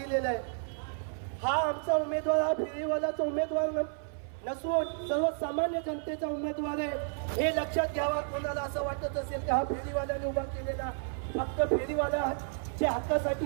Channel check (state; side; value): silent; left; 55 dB below the other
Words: आहे। हा आमचा उमेदवार हा फेरीवालाचा उमेदवार नसून सर्वसामान्य जनतेचा उमेदवार आहे हे लक्षात घ्यावा। कोणाला असं वाटत असेल की हा फेरीवाल्याने उभा केलेला फक्त फेरीवाल्याच्या